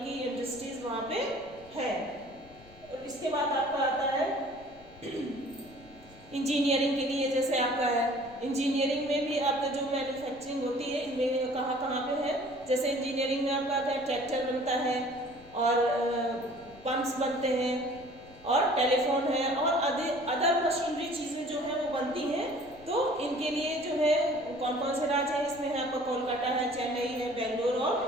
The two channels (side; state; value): left; noise; rumble, 23 dB below the sound